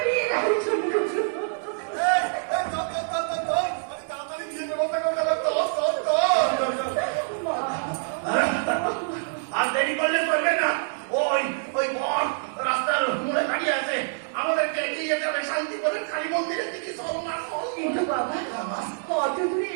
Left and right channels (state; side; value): silent; left; digital silence